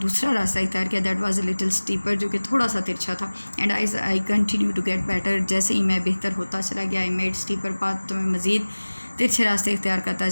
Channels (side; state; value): both; inverted; correlation -1.00